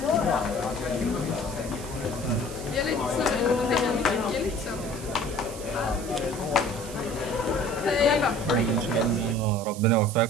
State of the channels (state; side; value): noise; right; hiss, 14 dB below the sound